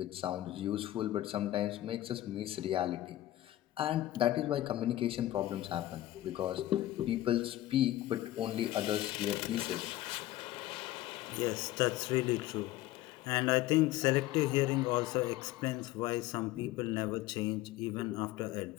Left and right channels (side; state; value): right; quieter; 15.1 dB